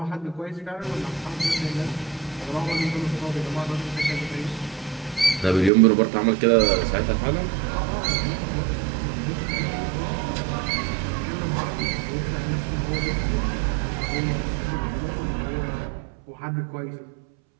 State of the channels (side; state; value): left; drops out; at 5.7 s